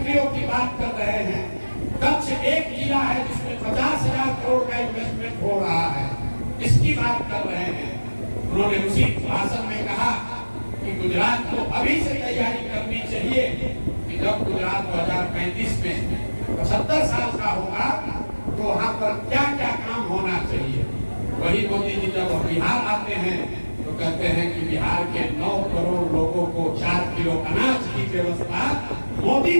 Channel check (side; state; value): both; inverted; correlation -1.00